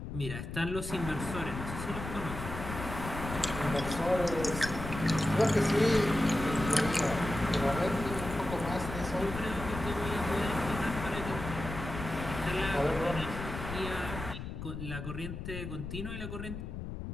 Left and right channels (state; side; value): noise; left; rumble, 7 dB below the sound